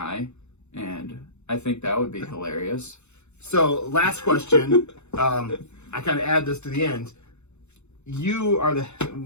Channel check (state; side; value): late; right; 0.82 ms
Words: and I think that would be hilarious. So, last question. I kind of add this to the end. You are the